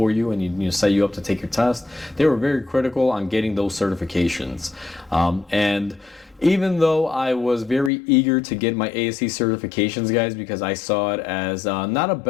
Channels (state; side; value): drops out; right; at 7.9 s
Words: you and, set you up to take your test. They were very critical on getting those certifications. And even though I was very eager to get my ASE certifications, guys, because I saw it as not a